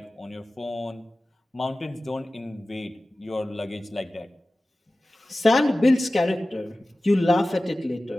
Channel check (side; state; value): both; normal; correlation 0.96